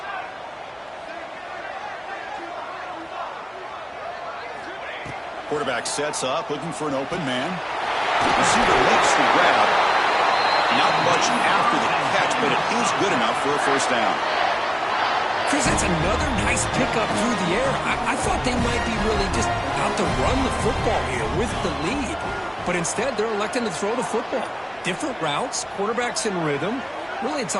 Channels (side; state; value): both; identical; correlation 1.00